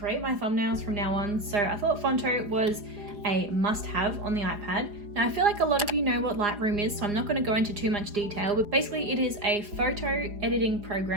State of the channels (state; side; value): late; left; 4.9 ms